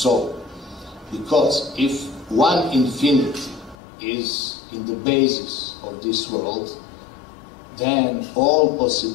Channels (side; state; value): right; drops out; at 3.8 s